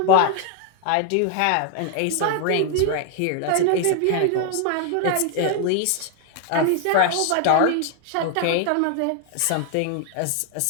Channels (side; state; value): both; different; correlation 0.00